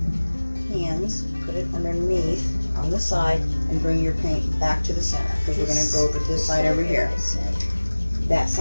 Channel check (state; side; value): inverted; both; correlation -1.00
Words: hands, put it underneath on the side, and bring your paint back to the center because we're going to go over this side over here, that